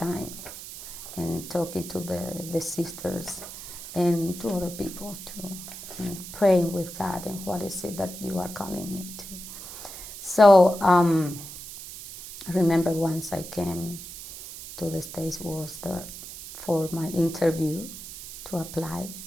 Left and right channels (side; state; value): right; noise; hiss, 12 dB below the sound